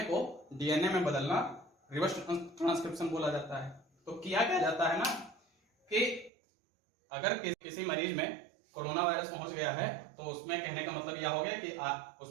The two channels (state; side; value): drops out; left; at 6.3 s